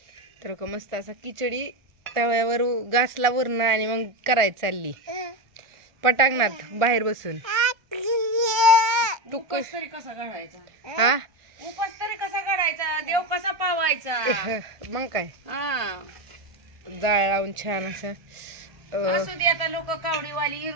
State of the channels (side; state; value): left; late; 1.5 ms